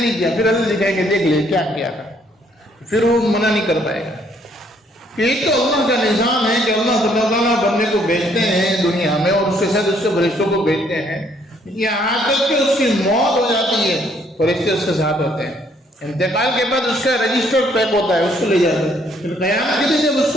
किया। फिर अल्लाह दिखाएंगे देख ले क्या किया था, फिर वो मना नहीं कर पाएगा। कि एक तो अल्लाह का निज़ाम है कि अल्लाह ताला बंदे को भेजते हैं दुनिया में और उसके साथ उसके फरिश्तों को भेजते हैं, यहाँ तक कि उसकी मौत हो जाती है फरिश्ते उसके साथ होते हैं। इंतकाल के बाद उसका रजिस्टर्ड पैक होता है, उसको ले जाते हैं। फिर क़यामत के दिन जब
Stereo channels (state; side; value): normal; both; correlation 0.66